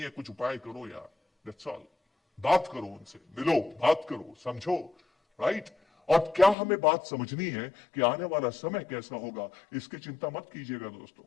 कुछ उपाय करो यार, दैट्स ऑल। बात करो उनसे, मिलो, बात करो, समझो, राइट। और क्या हमें बात समझनी है कि आने वाला समय कैसा होगा, इसकी चिंता मत कीजिएगा दोस्तों।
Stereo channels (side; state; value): right; drops out; at 6.6 s